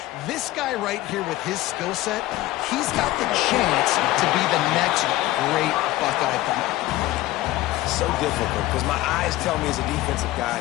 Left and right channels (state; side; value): quieter; right; 16.8 dB